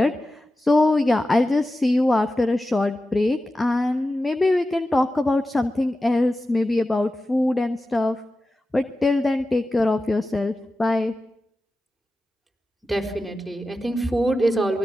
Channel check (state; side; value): normal; both; correlation 0.93